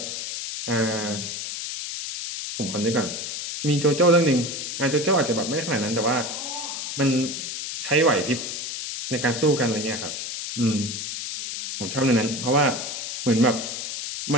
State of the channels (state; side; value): noise; left; hiss, 5 dB below the sound